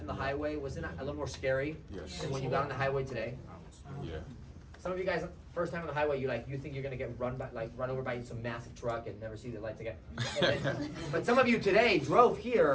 the highway, wasn't it a little more scary than when you got on the highway today? Yeah. Some of you guys, first time on the highway, you think you're gonna get run over by some massive truck and never see the lights again. But some of you today drove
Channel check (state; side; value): identical; both; correlation 1.00